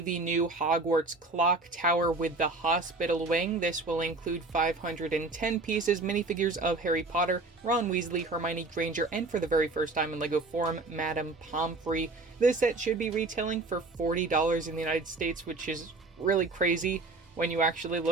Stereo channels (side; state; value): left; quieter; 3.3 dB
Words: new Hogwarts Clock Tower with the Hospital Wing. This will include 510 pieces, minifigures of Harry Potter, Ron Weasley, Hermione Granger, and for the very first time in LEGO form, Madame Pomfrey. This set should be retailing for $40 in the United States, which is really crazy when you actually